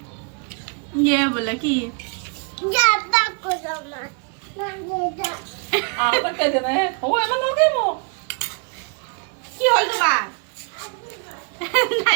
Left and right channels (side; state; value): left; quieter; 36.6 dB